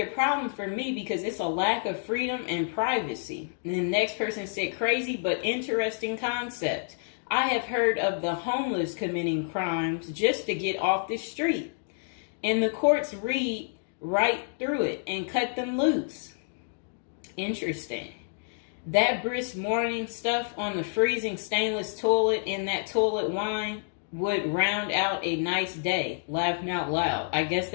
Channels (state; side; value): silent; right; digital silence